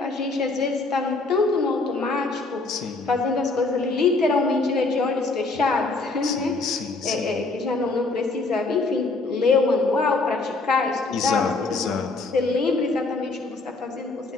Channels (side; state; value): right; quieter; 3.5 dB